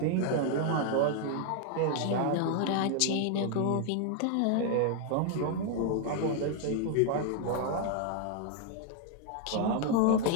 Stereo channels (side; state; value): both; different; correlation 0.00